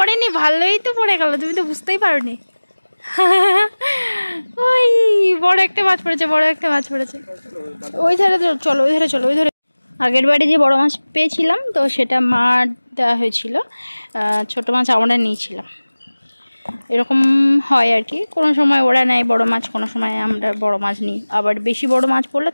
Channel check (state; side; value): inverted; both; correlation -1.00